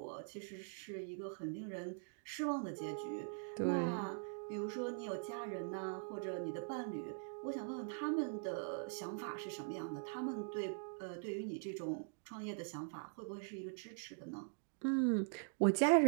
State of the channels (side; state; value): left; silent; digital silence